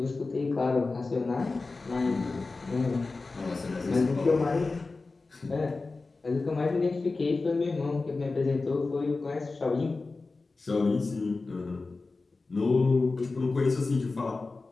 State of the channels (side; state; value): right; quieter; 3.7 dB